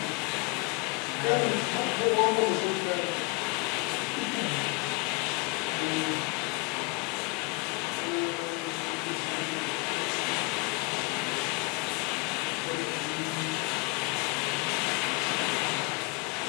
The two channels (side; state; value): right; quieter; 28.0 dB